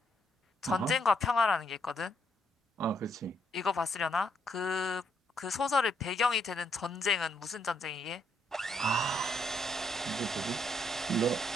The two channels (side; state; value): both; normal; correlation 0.74